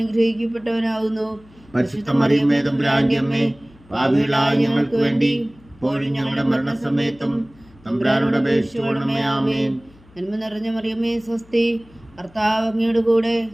പരിശുദ്ധ മറിയമേ തമ്പുരാന്റെ അമ്മേ, പാപികളായ ഞങ്ങൾക്ക് വേണ്ടി ഇപ്പോഴും ഞങ്ങളുടെ മരണസമയത്തും തമ്പുരാനോട് അപേക്ഷിച്ചുകൊള്ളണമേ. ആമേൻ. നന്മ നിറഞ്ഞ മറിയമേ സ്വസ്തി, കർത്താവ് അങ്ങയുടെ കൂടെ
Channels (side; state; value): left; noise; hum, 27 dB below the sound